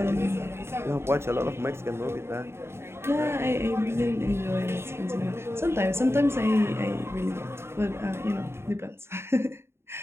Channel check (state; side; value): late; left; 0.12 ms